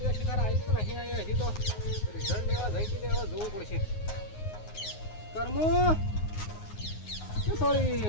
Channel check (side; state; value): right; late; 9.5 ms